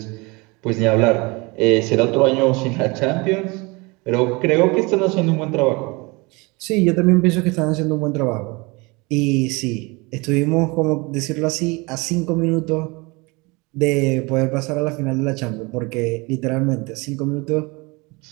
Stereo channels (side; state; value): left; quieter; 26.2 dB